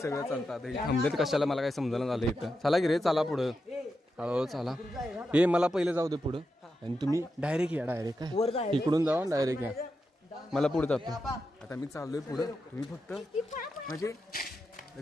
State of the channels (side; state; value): both; normal; correlation 0.87